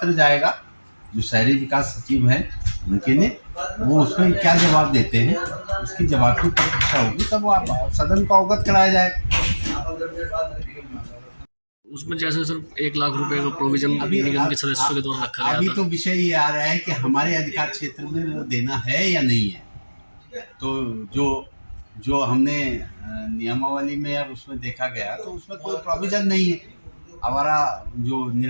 जाएगा जो शहरी विकास सचिव हैं उनके ने, वो उसमें क्या जवाब देते हैं उसकी जवाब की प्रतीक्षा होगी, तब वो आप सदन को अवगत कराया जाए। उसमें जैसे सर 1 लाख रुपए का प्रोविजन निगम के सदस्यों के द्वारा रखा गया अभी था। तो विषय ये आ रहा है कि हमारे अधिकार क्षेत्र में वो देना है या नहीं है। तो जो जो हमने नियमावली में अब उसमें देखा गया तो उसमें कोई प्रोविजन नहीं है। हमारा जो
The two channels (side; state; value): both; inverted; correlation -1.00